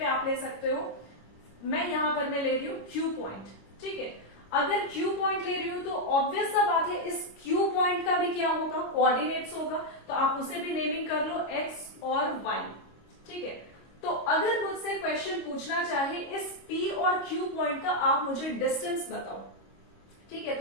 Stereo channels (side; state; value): right; late; 25 ms